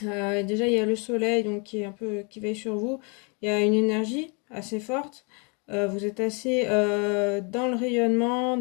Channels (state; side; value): quieter; right; 33.9 dB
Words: Déjà, il y a le soleil donc qui est un peu qui veille sur vous. Il y a une énergie assez forte. Vous êtes assez dans le rayonnement,